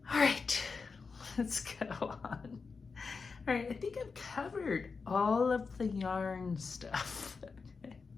all right, let's go on. All right, I think I've covered all of the yarn stuff. I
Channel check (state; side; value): quieter; right; 4.8 dB